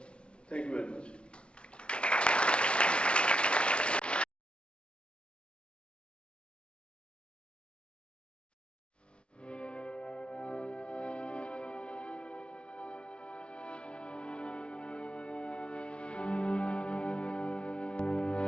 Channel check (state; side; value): late; right; 0.058 ms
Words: Thank you very much.